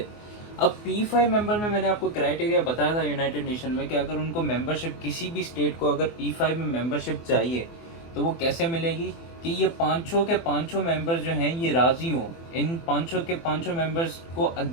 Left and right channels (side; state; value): right; late; 24 ms